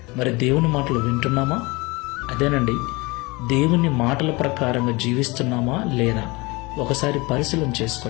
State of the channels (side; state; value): right; quieter; 24.5 dB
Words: మరి దేవుని మాటలు వింటున్నామా? అదేనండి, దేవుని మాటల ప్రకారంగా జీవిస్తున్నామా లేదా ఒకసారి పరిశీలన